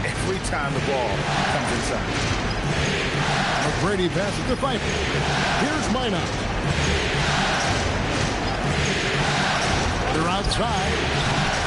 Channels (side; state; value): both; identical; correlation 1.00